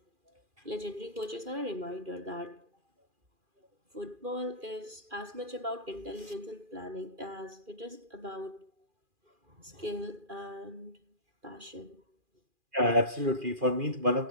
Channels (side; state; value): left; late; 2.4 ms